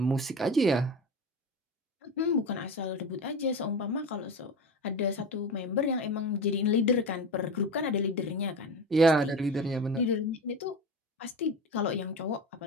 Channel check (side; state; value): both; normal; correlation 0.26